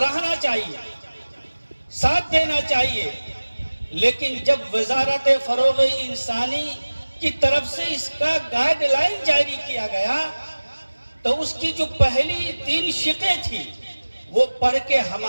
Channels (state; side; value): inverted; both; correlation -1.00